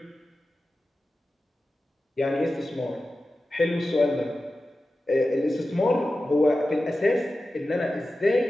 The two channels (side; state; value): both; normal; correlation 0.94